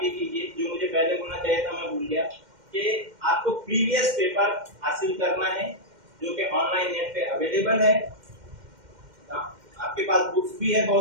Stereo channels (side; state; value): left; late; 2.1 ms